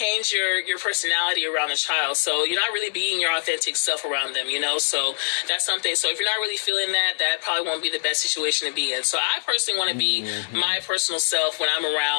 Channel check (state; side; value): silent; right; 63 dB below the other